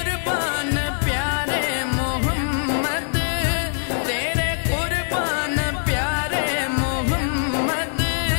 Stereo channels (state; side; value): silent; right; digital silence